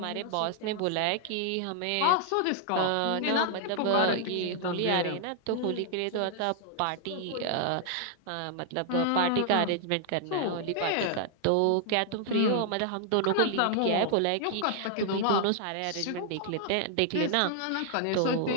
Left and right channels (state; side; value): different; both; correlation 0.00